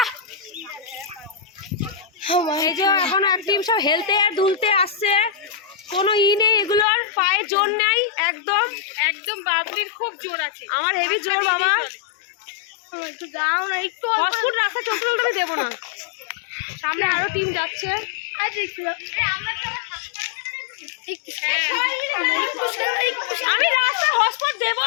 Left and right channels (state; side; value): drops out; right; at 6.9 s